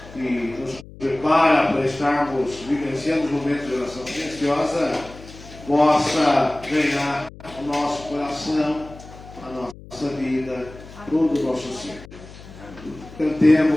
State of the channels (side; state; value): left; noise; hum, 18 dB below the sound